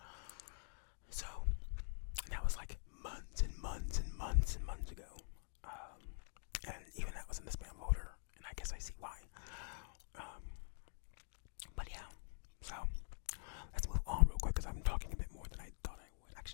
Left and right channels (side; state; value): right; silent; digital silence